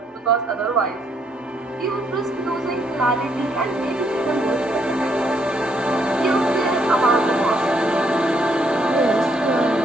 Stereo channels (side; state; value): both; normal; correlation 0.72